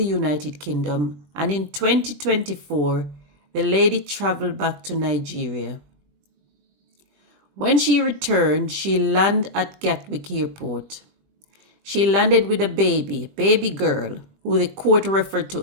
United Kingdom. And in 2024, the lady traveled back to Nigeria. When she returned, she landed at Gathwick Airport. She landed with a baby girl, who the court referred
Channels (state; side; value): late; left; 20 ms